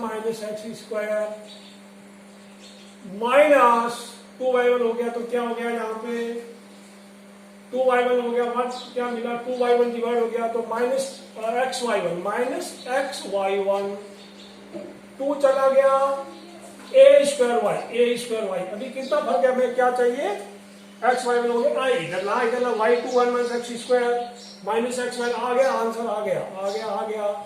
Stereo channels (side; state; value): both; identical; correlation 1.00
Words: x square minus 2y1 हो गया, तो क्या हो गया यहाँ पे 2y1 हो गया, क्या मिला 2y1 डिवाइड हो गया, तो माइनस एक्स वाई वन 2 चला गया, ए स्क्वायर वाई, अभी कितना फर्क है, हमें क्या चाहिए, एक्स वाई हो गया, इधर ला y2 1 minus x square minus x y, आ गया आंसर, आ गया